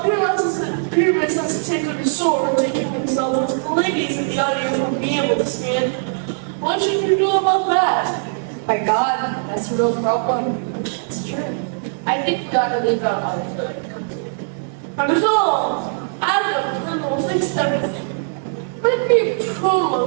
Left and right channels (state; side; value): silent; left; 66 dB below the other